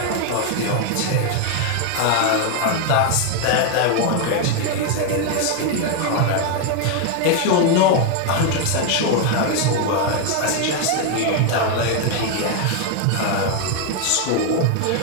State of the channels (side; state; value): both; different; correlation 0.01